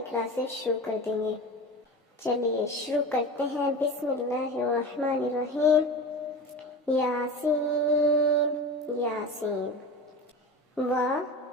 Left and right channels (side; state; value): both; normal; correlation 0.30